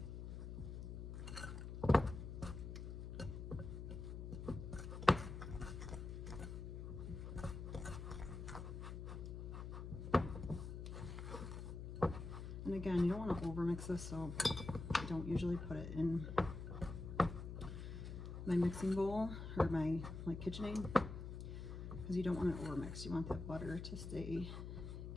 And again, you don't want to overmix this, so I don't usually put it in my mixing bowl or my KitchenAid, because you don't want it overmixed. You want that butter to stay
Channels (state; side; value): noise; left; hum, 7 dB below the sound